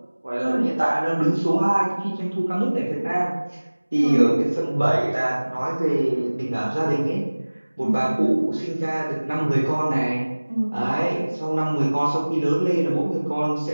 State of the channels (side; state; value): both; inverted; correlation -1.00